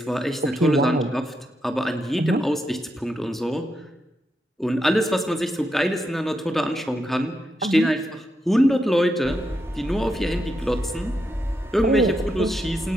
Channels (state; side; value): normal; both; correlation 0.83